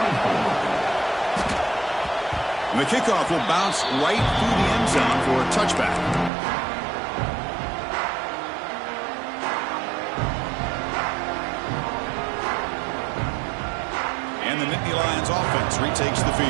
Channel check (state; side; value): drops out; left; at 6.3 s